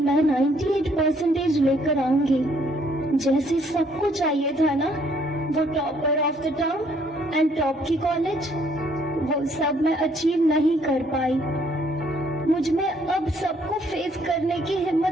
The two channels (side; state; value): both; normal; correlation 0.66